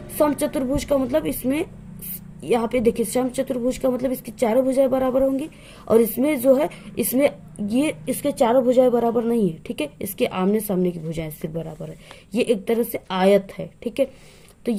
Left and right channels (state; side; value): identical; both; correlation 1.00